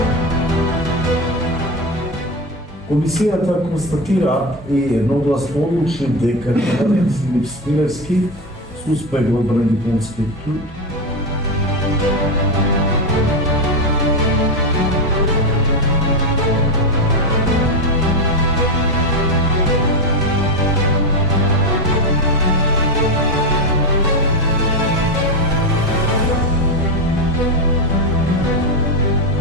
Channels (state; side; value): normal; both; correlation 0.12